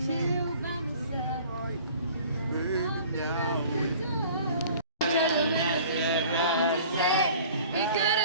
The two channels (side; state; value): both; inverted; correlation -0.48